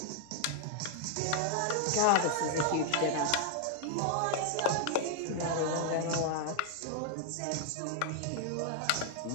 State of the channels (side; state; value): both; different; correlation -0.01